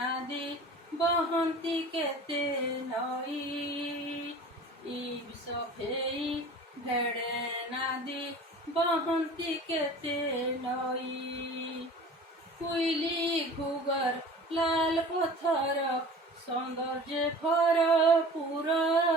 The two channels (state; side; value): normal; both; correlation 0.41